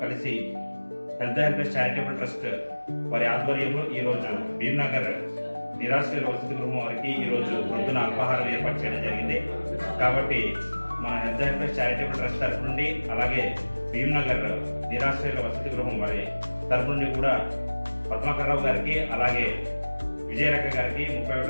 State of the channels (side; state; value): both; inverted; correlation -1.00